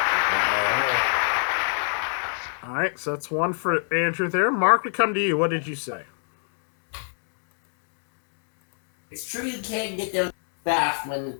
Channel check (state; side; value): silent; right; digital silence